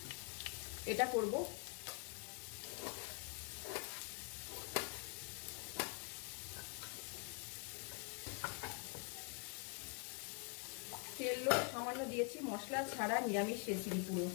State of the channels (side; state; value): right; quieter; 36.2 dB